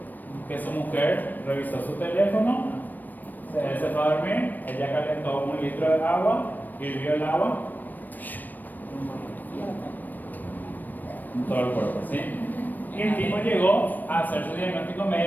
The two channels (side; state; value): right; late; 0.088 ms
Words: que su mujer revisó su teléfono, él se fue a dormir, ella calentó 1 litro de agua, hirvió el agua en todo el cuerpo, ¿sí? Y el tipo llegó a hacer su diagnóstico